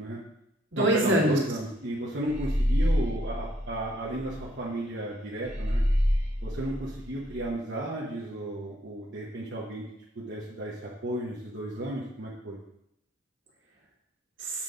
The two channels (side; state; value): both; normal; correlation 0.66